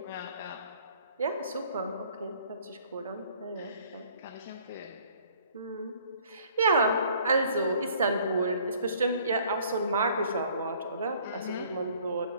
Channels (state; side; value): inverted; both; correlation -0.57